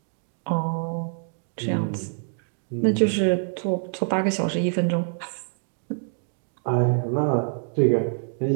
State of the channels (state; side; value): silent; left; 61 dB below the other